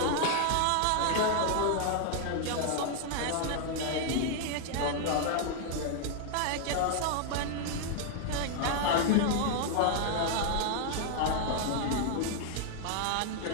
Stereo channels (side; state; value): both; different; correlation 0.00